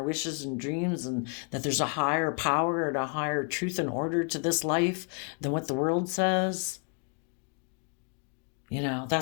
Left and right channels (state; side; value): quieter; right; 39.8 dB